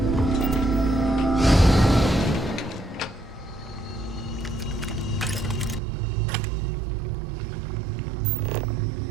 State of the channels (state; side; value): drops out; left; at 5.8 s